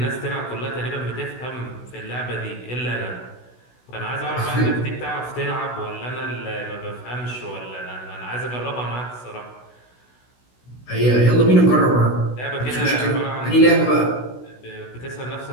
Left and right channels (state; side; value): late; right; 16 ms